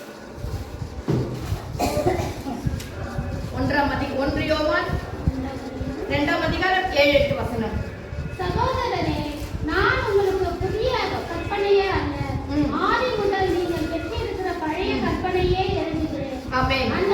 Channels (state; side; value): identical; both; correlation 1.00